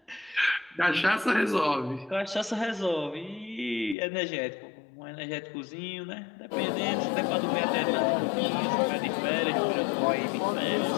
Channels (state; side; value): drops out; right; at 4.0 s